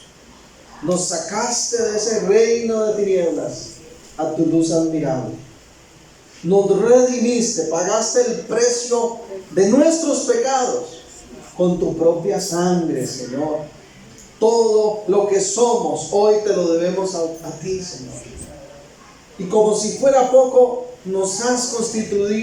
Nos sacaste de ese reino de tinieblas a tu luz admirable. Nos redimiste, pagaste el precio de nuestros pecados con tu propia sangre, Señor. Todo lo que somos hoy te lo debemos a ti, Señor. Y como si fuera poco, nos has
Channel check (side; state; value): both; identical; correlation 1.00